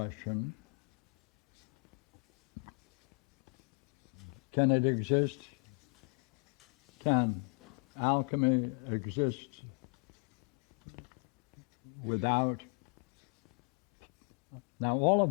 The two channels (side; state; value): right; quieter; 37.2 dB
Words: can it exist? Can alchemy exist without? Now, all